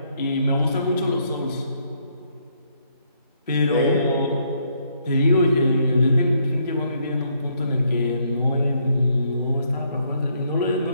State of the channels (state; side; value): inverted; both; correlation -0.71